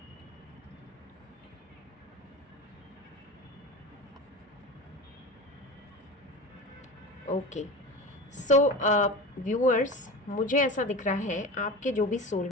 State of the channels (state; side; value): normal; both; correlation 0.30